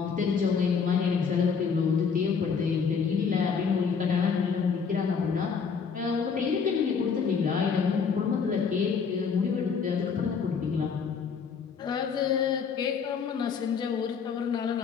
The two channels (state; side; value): quieter; right; 6.0 dB